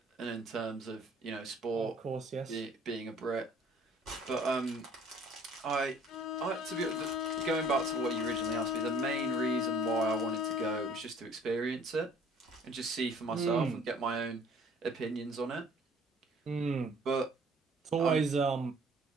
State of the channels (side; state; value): both; normal; correlation 0.55